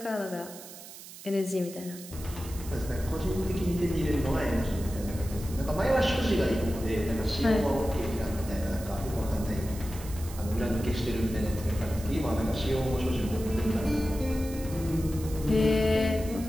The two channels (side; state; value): right; noise; hiss, 15 dB below the sound